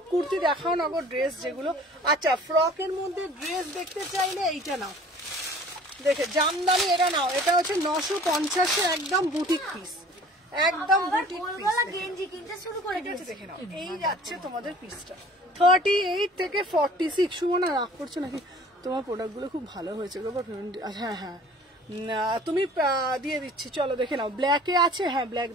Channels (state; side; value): normal; both; correlation 0.49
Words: কুর্তি দেখাও না গো, ড্রেস যেগুলো। আচ্ছা ফ্রকের মধ্যে ড্রেস দেখতে চাইলে এইটা নাও, দেখে জামদানি এটা নাও, এটা হচ্ছে 950 একদম বুটিক পিস, একদম বুটিক পিস গেঞ্জি কিনতে শুরু করে দিয়েছে। দেখে নাও, এই যাচ্ছে তোমাদের পিসটা 38 থেকে 46। সুমনা রাগ করছো নাকি? তোমার প্রোডাক্ট গুলো খুব ভালো হয়েছে গো। হ্যাঁ হ্যাঁ তুমি দিয়ে দিচ্ছি, চলো দেখে নাও। ব্ল্যাকে আছে, হ্যাঁ ব্ল্যাক